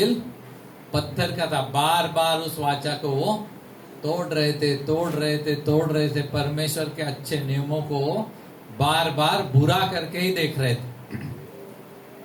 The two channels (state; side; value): identical; both; correlation 1.00